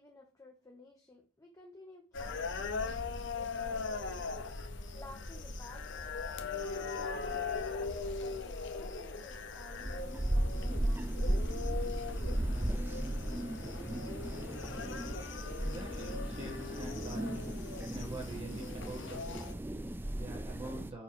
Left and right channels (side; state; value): both; normal; correlation 0.60